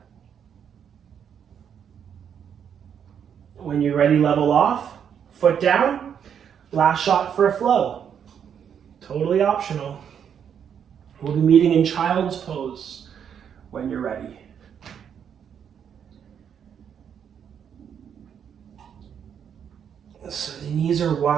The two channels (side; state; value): left; quieter; 8.1 dB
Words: When you're ready, level off, foot down, last shot for a flow. Totally optional. We'll be meeting in child's pose when you're ready. So the knees are